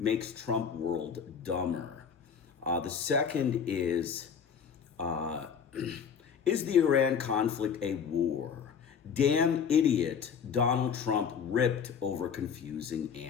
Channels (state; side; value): quieter; right; 7.0 dB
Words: Trump world dumber." The second is the Iran conflict a war? Damn idiot, Donald Trump ripped over confusing